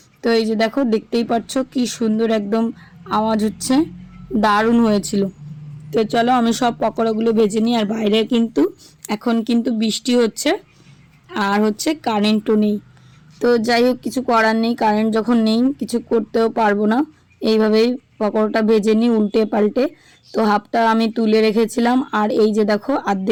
তো এই যে দেখো দেখতেই পাচ্ছ কি সুন্দর একদম আওয়াজ হচ্ছে, দারুণ হয়েছিল। তো চলো আমি সব পকোড়াগুলো ভেজে নিই। আর বাইরে কিন্তু এখন কিন্তু বৃষ্টি হচ্ছে, আর হচ্ছে কারেন্টও নেই। তো যাই হোক, কিছু করার নেই, কারেন্ট যখন নেই কিছু করতেও পারবো না। এইভাবেই পকোড়াটা ভেজে নিই উল্টে পাল্টে। তো হাফটা আমি তুলে রেখেছিলাম, আর এই যে দেখো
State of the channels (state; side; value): identical; both; correlation 1.00